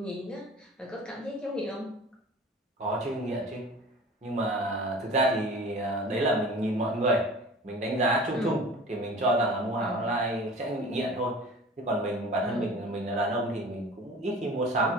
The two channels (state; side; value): normal; both; correlation 0.41